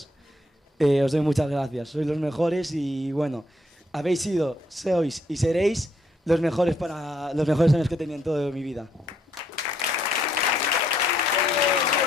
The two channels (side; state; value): both; normal; correlation 0.71